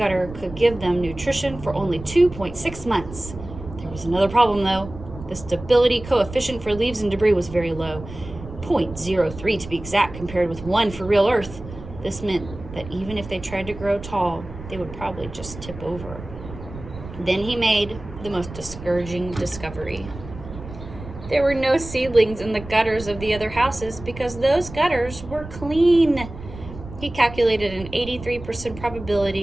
could give them nutrition for only 2.6 months. There was another problem, though. The stability coefficient for leaves and debris was very low, 0.03 to be exact, compared with 1 for real Earth. This meant that even if they tried to grow tall, they would probably just tip over. Then he made the most discouraging discovery. There were no seedlings in the gutters of the other houses because those gutters were clean. He calculated an 83%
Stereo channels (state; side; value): noise; right; rumble, 13 dB below the sound